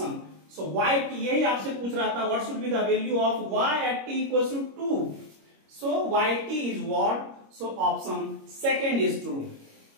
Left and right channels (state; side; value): late; left; 25 ms